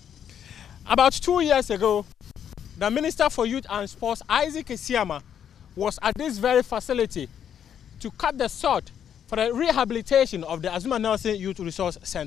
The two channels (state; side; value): quieter; right; 8.9 dB